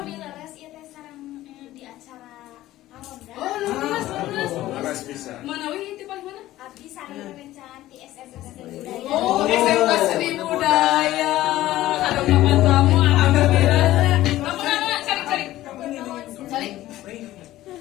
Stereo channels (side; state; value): right; quieter; 15.2 dB